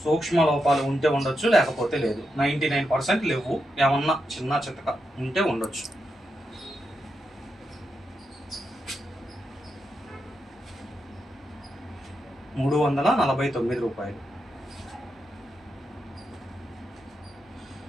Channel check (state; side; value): normal; both; correlation 0.85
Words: సూక్ష్మ లోపాలు ఉంటే ఉండొచ్చు, లేకపోతే లేదు. 99% లేవు. ఏమన్నా చిన్న చితక ఉంటే ఉండొచ్చు. ₹349.